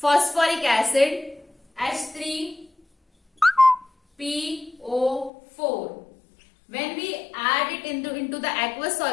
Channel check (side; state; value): right; drops out; at 5.3 s